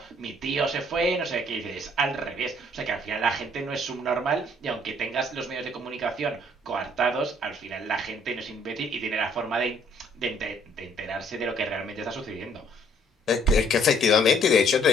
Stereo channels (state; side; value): normal; both; correlation 0.63